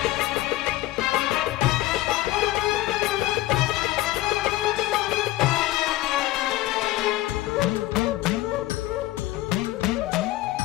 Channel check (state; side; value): quieter; right; 16.7 dB